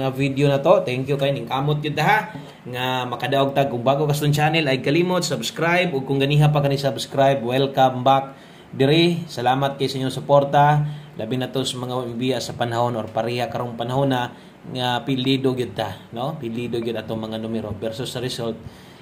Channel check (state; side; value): identical; both; correlation 1.00